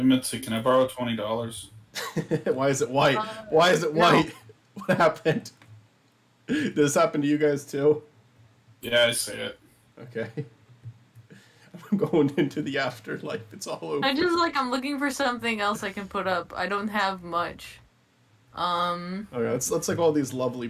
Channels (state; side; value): identical; both; correlation 1.00